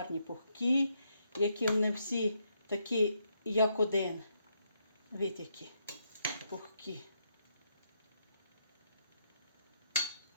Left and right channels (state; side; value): inverted; both; correlation -0.78